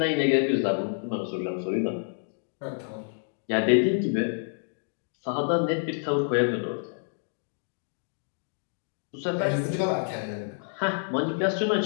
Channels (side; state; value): right; silent; digital silence